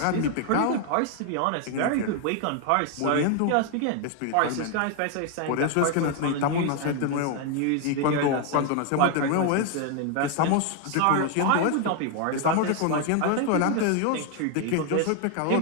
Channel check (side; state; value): both; different; correlation 0.01